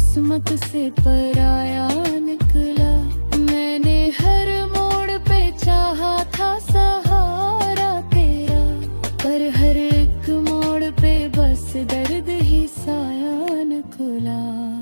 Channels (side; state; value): both; inverted; correlation -1.00